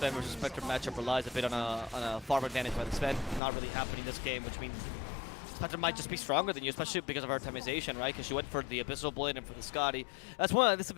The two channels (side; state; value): right; drops out; at 3.4 s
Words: versus Spectre matchup relies a bit on a farm advantage by the Sven. Not really happening this game, which means Spectre might just be stronger than you, especially because of her itemization, right? Because she went for the Abyssal Blade and for the Scotty. That's one of the